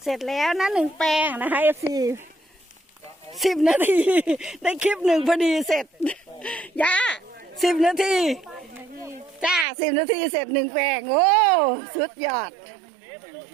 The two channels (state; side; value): drops out; left; at 9.7 s